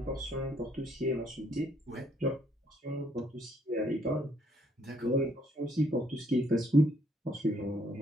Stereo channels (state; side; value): normal; both; correlation 0.68